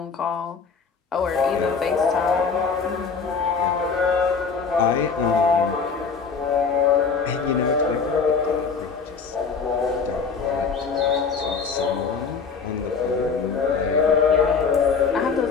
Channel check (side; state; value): right; quieter; 5.4 dB